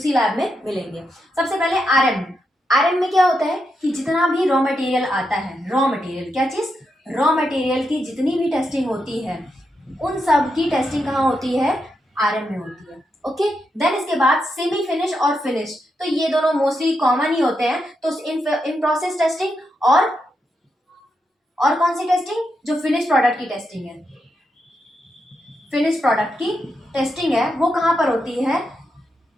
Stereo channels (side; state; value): both; normal; correlation 0.84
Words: लैब में मिलेंगे। सबसे पहले आरएम। आरएम में क्या होता है कि जितना भी रॉ मटेरियल आता है, रॉ मटेरियल क्या चीज, रॉ मटेरियल की जितनी भी टेस्टिंग होती है, उन सब की टेस्टिंग कहाँ होती है, आरएम में होती है। ओके, देन इसके बाद सेमी फिनिश और फिनिश, तो ये दोनों मोस्टली कॉमन ही होते हैं। तो इन प्रोसेस टेस्टिंग और कौन सी टेस्टिंग, जो फिनिश प्रोडक्ट की टेस्टिंग है, फिनिश प्रोडक्ट की टेस्टिंग है, वो कहाँ पर होती है,